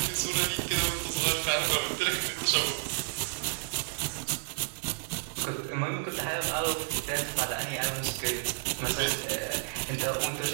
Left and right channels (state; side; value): silent; left; digital silence